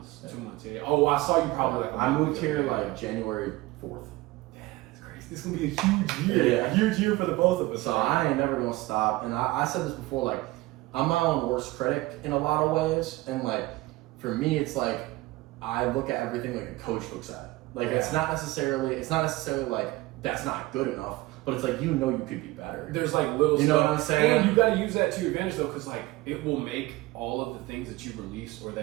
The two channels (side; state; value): left; quieter; 19.4 dB